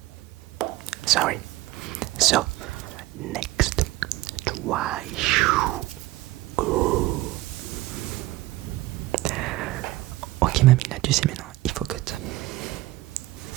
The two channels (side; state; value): left; quieter; 18.0 dB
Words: Sorry. So, next. Try. Ok mamie, là tu sais maintenant, il faut cut.